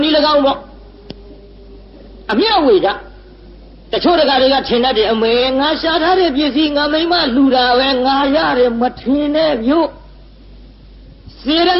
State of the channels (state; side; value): identical; both; correlation 1.00